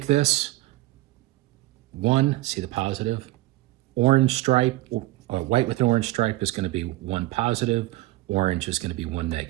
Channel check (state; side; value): quieter; left; 18.2 dB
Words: this one, see the positive, orange stripe, white with an orange stripe is going to be 1 positive, orange is going to be 1